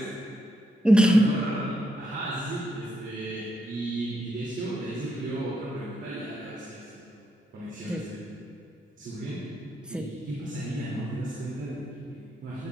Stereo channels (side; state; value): both; normal; correlation 0.80